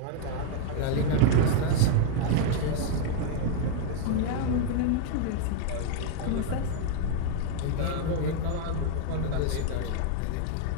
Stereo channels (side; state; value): both; different; correlation 0.00